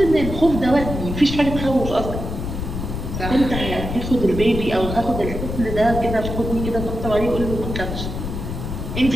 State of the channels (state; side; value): noise; left; rumble, 5 dB below the sound